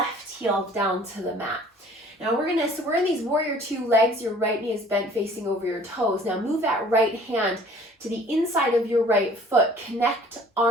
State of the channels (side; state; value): both; normal; correlation 0.52